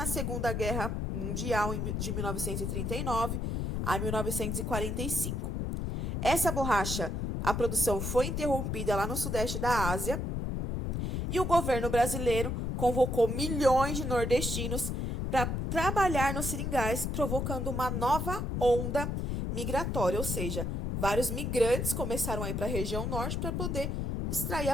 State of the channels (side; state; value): left; noise; rumble, 1 dB below the sound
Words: Segunda Guerra Mundial, de 1939 a 1945. Essa borracha, a produção foi interrompida lá no sudeste da Ásia, e o governo brasileiro convocou milhões de nordestinos para trabalhar nos seringais, provocando uma nova onda migratória, ou seja, vários migrantes começaram a ir para a região norte para poder extrair